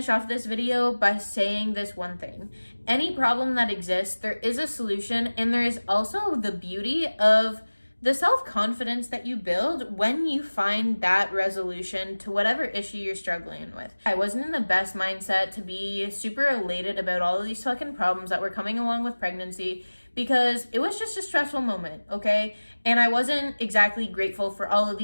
off this video by saying this one thing. Any problem that exists, there is a solution, and there is also the beauty of the self-confidence that you build when you find that resolution to whatever issue you're struggling with. I wasn't in the best mindset to be super elated about all of these fucking problems that were coming along with pregnancy, because it was just a stressful moment, okay? And I wasn't exactly grateful for all of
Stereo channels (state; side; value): inverted; both; correlation -1.00